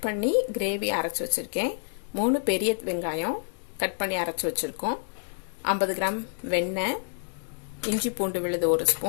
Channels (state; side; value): silent; right; digital silence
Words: பண்ணி கிரேவி அரைச்சு வச்சிருக்கேன். 3 பெரிய வெங்காயம் கட் பண்ணி அரைச்சு வச்சிருக்கோம். 50 கிராம் வெண்ணெய், இஞ்சி பூண்டு விழுது 1